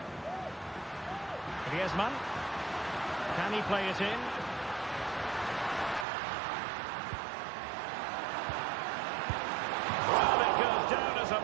Griezmann. Can he play it in? Well, it goes down as a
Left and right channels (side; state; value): left; drops out; at 6.1 s